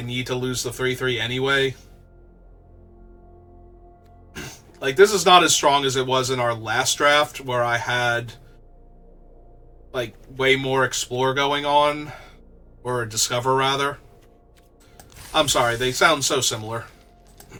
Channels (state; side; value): identical; both; correlation 1.00